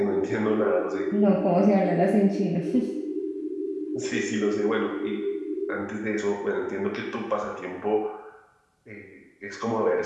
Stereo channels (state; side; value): identical; both; correlation 1.00